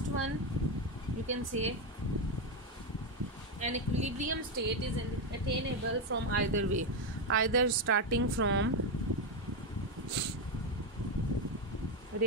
one, you can say an equilibrium state is attainable from either way, either starting from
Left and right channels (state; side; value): normal; both; correlation 0.07